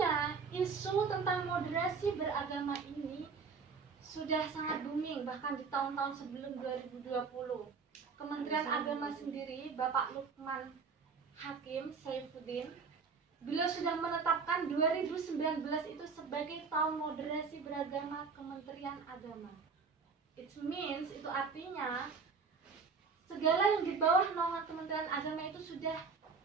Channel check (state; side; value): quieter; left; 5.2 dB